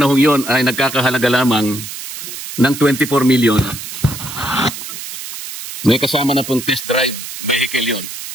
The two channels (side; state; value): right; noise; hiss, 9 dB below the sound